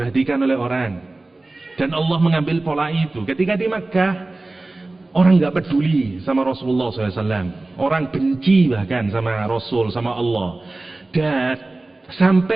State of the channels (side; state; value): left; quieter; 3.0 dB